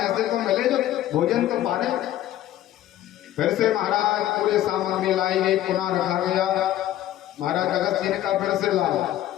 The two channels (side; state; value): right; quieter; 13.1 dB